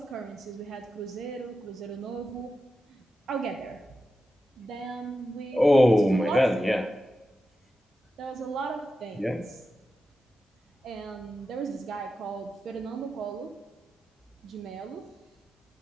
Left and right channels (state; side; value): normal; both; correlation 0.91